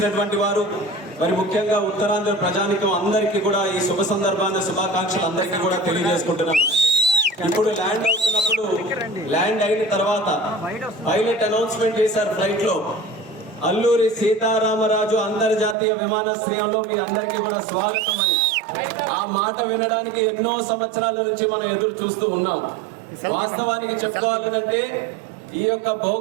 వారు మరి ముఖ్యంగా ఉత్తరాంధ్ర ప్రజానికం అందరికీ కూడా ఈ శుభ సందర్భాన్ని శుభాకాంక్షలు అందరికీ కూడా తెలియజేసుకుంటున్నాను. ఇప్పుడు ల్యాండ్ అవుతున్నప్పుడు ల్యాండ్ అయిన తర్వాత పైలట్ అనౌన్స్మెంట్ చేశారు ఫ్లైట్ లో, అల్లూరి సీతారామరాజు అంతర్జాతీయ విమానాశ్రయంలో మీ అందరికీ కూడా స్వాగతం అని. ఆ మాట వినడానికి ఎన్నో సంవత్సరాల నుంచి మనం ఎదురు చూస్తూ ఉన్నాం. వాస్తవానికి చెప్పుకోవాలంటే ఈ యొక్క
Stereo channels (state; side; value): drops out; left; at 15.8 s